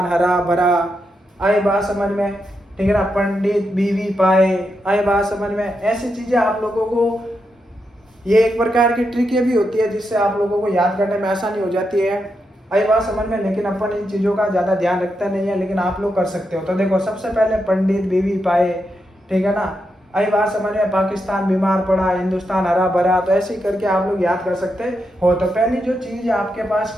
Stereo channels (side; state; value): both; normal; correlation 0.84